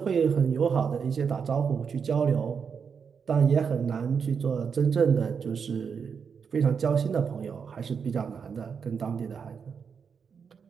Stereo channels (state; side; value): quieter; left; 6.4 dB